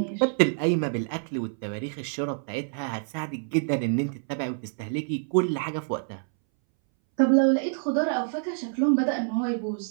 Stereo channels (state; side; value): silent; left; 60 dB below the other